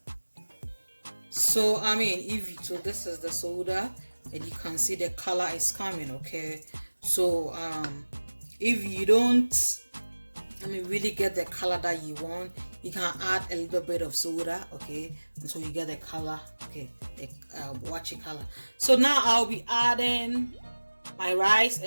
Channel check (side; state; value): both; inverted; correlation -1.00